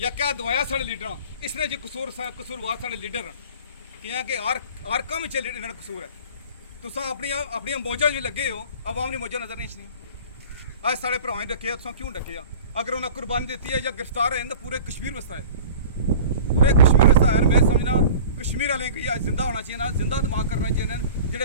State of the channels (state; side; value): inverted; both; correlation -0.41